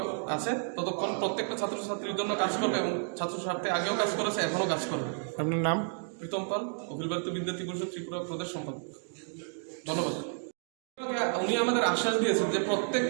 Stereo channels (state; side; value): silent; left; 57 dB below the other